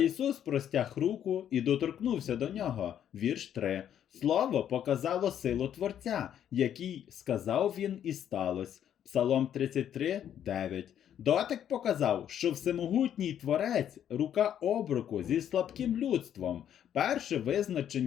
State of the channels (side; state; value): right; quieter; 9.9 dB